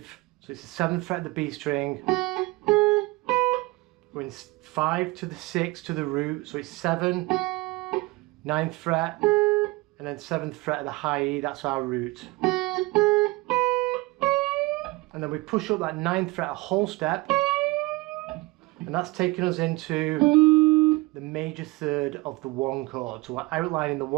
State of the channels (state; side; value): quieter; left; 22.9 dB